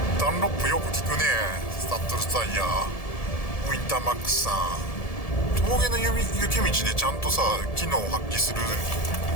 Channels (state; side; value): late; right; 1.7 ms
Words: ダンロップよく効くね。スタッドレスタイヤ、ウィンターマックスさん。峠の雪道でちゃんとさ機能を発揮する